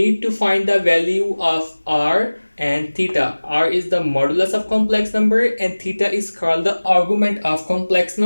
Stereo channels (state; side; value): inverted; both; correlation -1.00